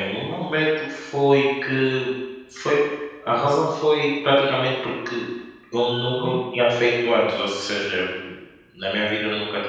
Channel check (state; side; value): identical; both; correlation 1.00